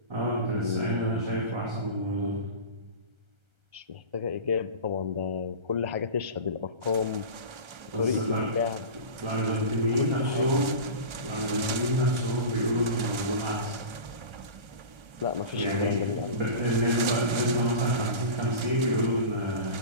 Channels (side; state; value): left; late; 1.3 ms